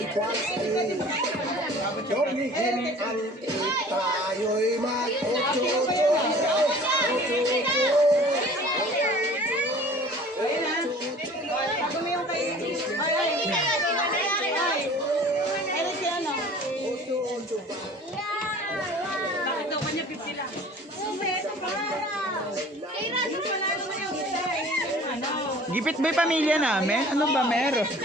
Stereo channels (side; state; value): both; normal; correlation 0.47